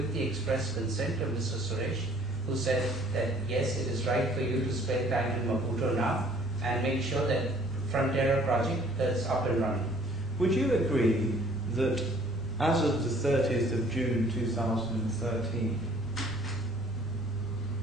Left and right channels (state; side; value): normal; both; correlation 0.56